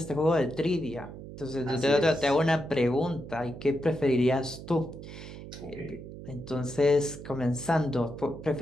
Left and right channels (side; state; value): right; noise; hum, 13 dB below the sound